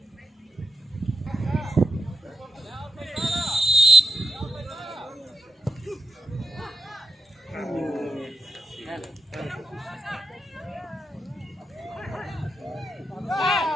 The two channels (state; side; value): normal; both; correlation 0.88